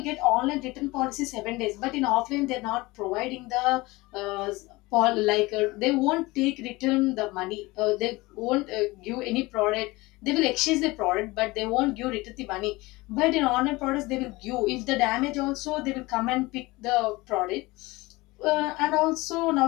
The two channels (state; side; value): quieter; right; 21.7 dB